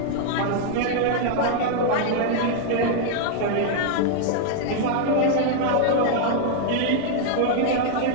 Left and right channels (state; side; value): different; both; correlation 0.00